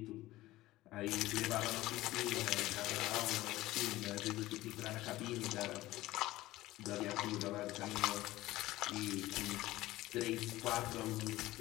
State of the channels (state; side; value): quieter; right; 17.1 dB